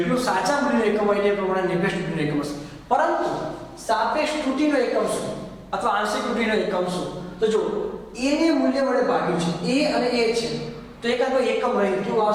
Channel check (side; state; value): both; identical; correlation 1.00